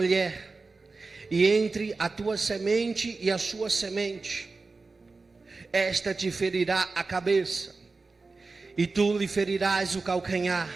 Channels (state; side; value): quieter; left; 3.9 dB